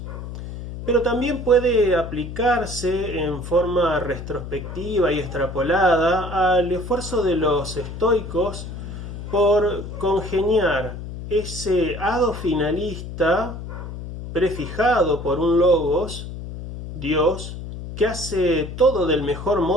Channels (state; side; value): noise; left; hum, 9 dB below the sound